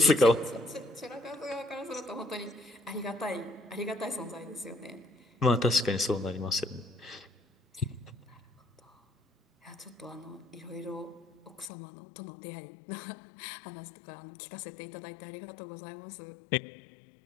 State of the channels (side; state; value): right; drops out; at 11.7 s